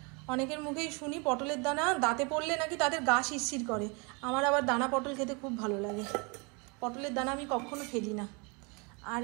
অনেকের মুখেই শুনি পটলের দানা দাঁতে পড়লে নাকি তাদের গা শিরশির করে, আমার আবার দানা পটল খেতে খুব ভালো লাগে। পটলের দানা আমি কখনো ফেলি না। আর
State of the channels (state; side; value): quieter; left; 31.3 dB